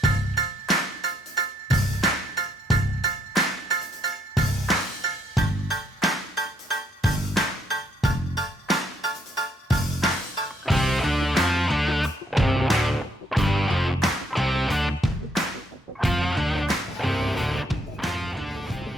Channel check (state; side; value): normal; both; correlation 0.71